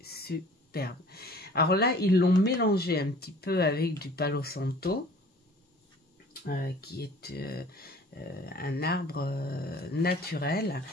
superbe. Alors là, ils l'ont mélangé un petit peu avec du Palo Santo. Qui est un arbre naturel.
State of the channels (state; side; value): normal; both; correlation 0.49